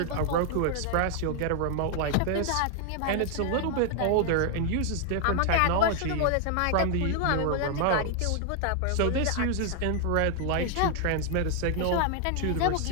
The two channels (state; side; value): different; both; correlation 0.00